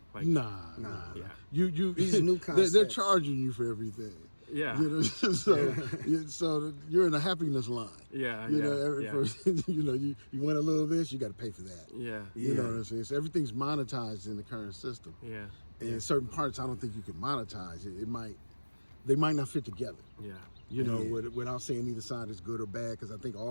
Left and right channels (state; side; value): inverted; both; correlation -1.00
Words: Like Nah. yeah. You These new they're concepts. charging you for everything. Yeah. You know, so you're in a happiness line. Yeah. You yeah, know, every yeah. person, you know, you want a little of this, you got to pay for that. Yeah. You know what I'm saying? So everything's monetized in the current system. Yeah. And certain parts, I don't think you can monetize it. They might not fit together. Yeah. You know, without saying either side is good or bad, because I think